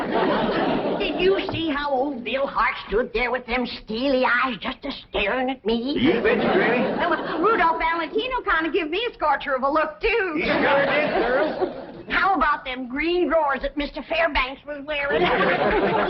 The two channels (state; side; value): identical; both; correlation 1.00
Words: Did you see how old Bill Hart stood there with them steely eyes just a-staring at me? You bet you, Granny. Well, Rudolph Valentino kind of gave me a scorcher of a look, too. You sure did, Pearl. How about them green drawers that Mr. Fairbanks was wearing?